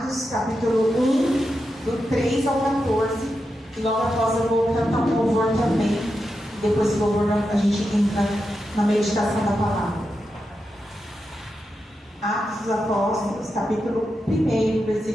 capítulo 1, do 3 ao 14. E logo após eu vou cantar um louvor também. Depois do louvor a gente entra na meditação da palavra. Atos dos Apóstolos, capítulo 1,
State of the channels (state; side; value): normal; both; correlation 0.88